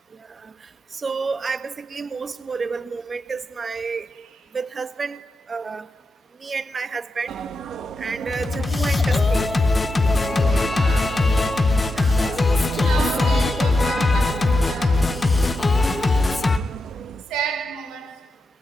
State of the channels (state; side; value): normal; both; correlation 0.87